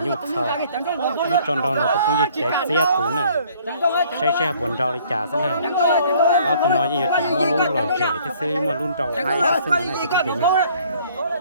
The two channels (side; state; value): both; inverted; correlation -0.58